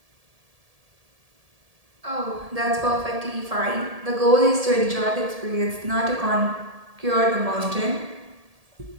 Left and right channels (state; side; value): late; left; 1.7 ms